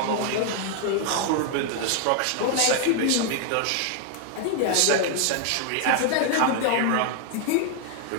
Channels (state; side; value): different; both; correlation 0.00